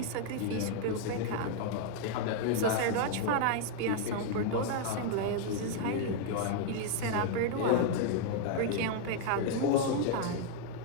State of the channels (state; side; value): different; both; correlation 0.00